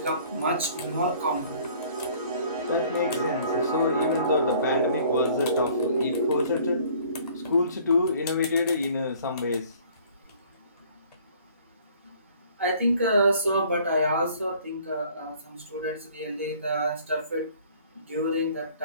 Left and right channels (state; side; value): inverted; both; correlation -0.55